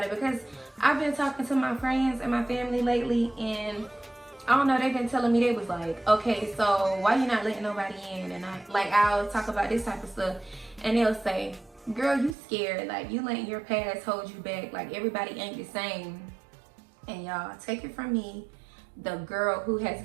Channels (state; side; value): drops out; left; at 12.4 s